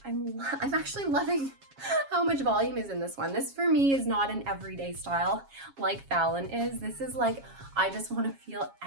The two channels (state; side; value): late; left; 7.3 ms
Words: I'm actually loving how much volume is in this one. This for me is not an everyday style like Fallon is. This is like, I just want to feel